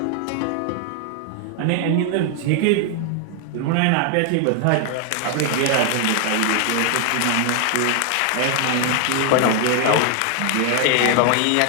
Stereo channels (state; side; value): different; both; correlation 0.00